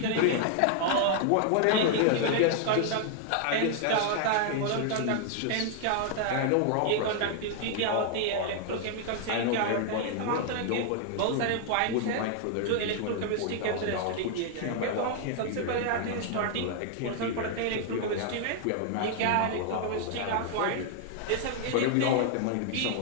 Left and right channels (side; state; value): both; different; correlation 0.00